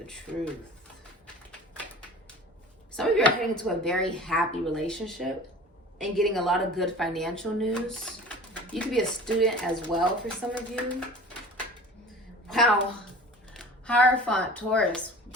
truth. Some of you are heading into a very happy relationship and getting a lot of good financial news. You could be a student as well for some of you. Wow. Hierophant, Taurus.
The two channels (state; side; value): normal; both; correlation 0.41